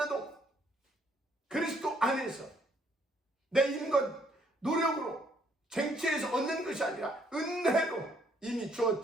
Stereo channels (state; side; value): normal; both; correlation 0.68